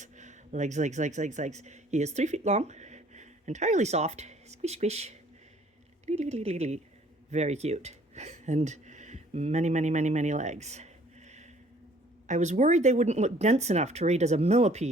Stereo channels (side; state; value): both; normal; correlation 0.57